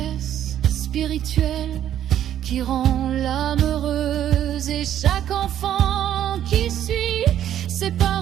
spirituelle qui rend l'âme heureuse. Et chaque enfant qui suit ses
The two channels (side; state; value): left; quieter; 10.9 dB